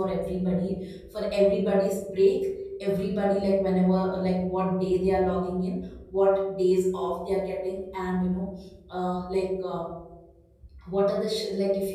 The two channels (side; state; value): both; identical; correlation 1.00